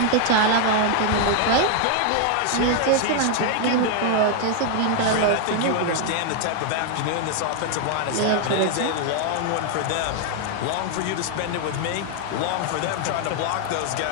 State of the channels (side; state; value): both; different; correlation 0.00